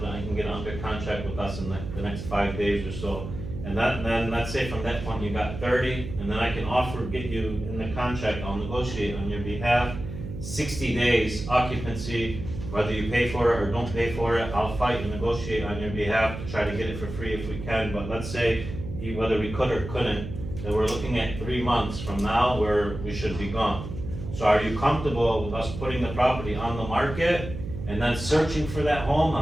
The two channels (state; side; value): noise; right; hum, 8 dB below the sound